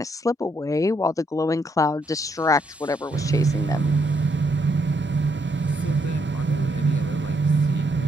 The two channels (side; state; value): both; normal; correlation 0.75